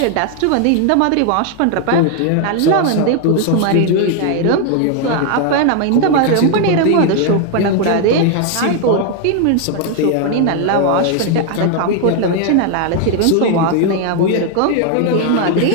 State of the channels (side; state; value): both; different; correlation 0.00